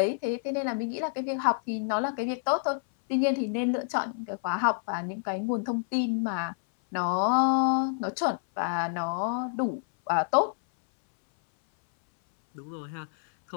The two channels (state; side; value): silent; right; 59 dB below the other